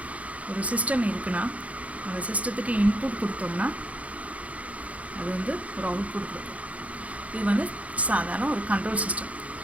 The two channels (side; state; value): left; late; 0.067 ms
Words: ஒரு சிஸ்டம் இருக்குன்னா அந்த சிஸ்டத்துக்கு இன்புட் கொடுத்தோம்னா அது வந்து ஒரு அவுட்புட் கொடுக்கும். இது வந்து சாதாரண ஒரு கண்ட்ரோல் சிஸ்டம்.